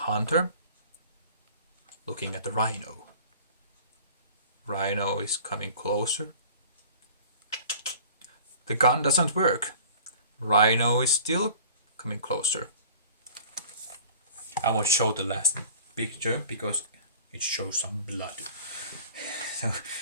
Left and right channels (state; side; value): inverted; both; correlation -0.46